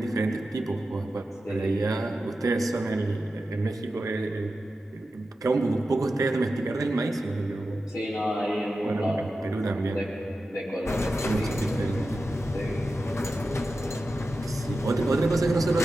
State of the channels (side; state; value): both; normal; correlation 0.92